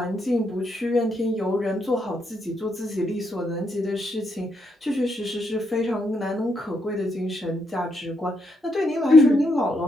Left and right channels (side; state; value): both; normal; correlation 0.79